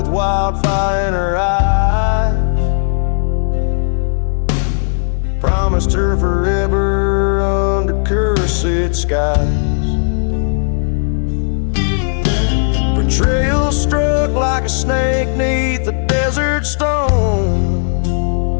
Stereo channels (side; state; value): right; silent; digital silence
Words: wildfire in her eyes. Promised her forever under cursed skies. Betrayal struck like a snake 'neath a desert stone.